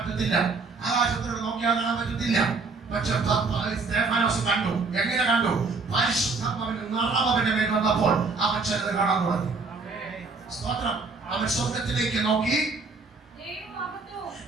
ആകാശത്തോട് നോക്കിയാൽ കാണാൻ പറ്റത്തില്ല. പക്ഷെ സ്തേഫാനോസ് കണ്ടു. എങ്ങനെ കണ്ടു? പരിശുദ്ധാത്മാവിന്റെ നിറവ് അവന്റെ മേൽ വന്നപ്പോൾ അവൻ ചിലത് കാണാൻ തുടങ്ങി. സ്തോത്രം. അവൻ സ്വർഗത്തിലേക്ക് നോക്കി.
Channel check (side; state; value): left; quieter; 4.2 dB